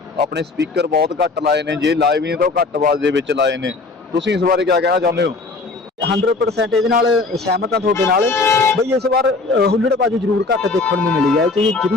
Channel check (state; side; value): quieter; right; 3.7 dB